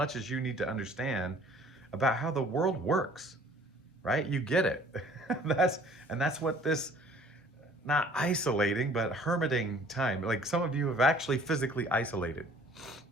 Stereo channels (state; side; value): normal; both; correlation 0.54